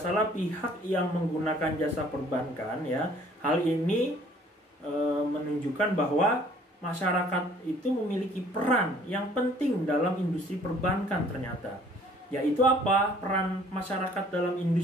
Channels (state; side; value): normal; both; correlation 0.57